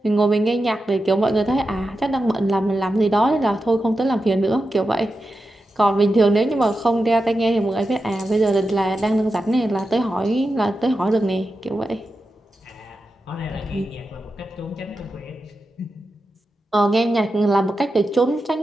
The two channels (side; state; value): both; normal; correlation 0.90